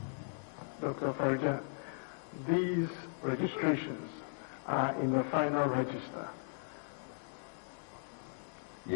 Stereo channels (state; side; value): silent; right; 53 dB below the other